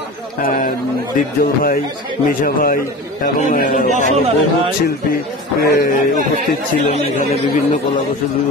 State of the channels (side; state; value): both; normal; correlation 0.33